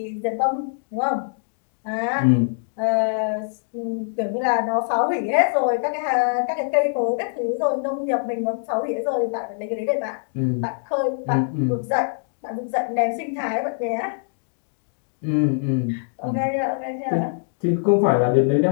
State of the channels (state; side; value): silent; right; digital silence